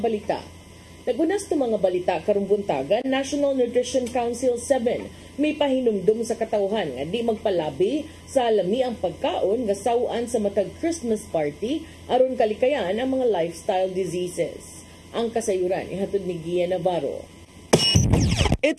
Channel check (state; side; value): identical; both; correlation 1.00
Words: Nagunas to mga balita karong buntagan, National Nutrition Council 7 may pahinumdum sa katawhan nga di magpalabi sa lami ang pagkaon nga sawaan sa matag Christmas party aron kalikayan ang mga lifestyle diseases. Ang kasayuran ihatod ni Gia Navarro.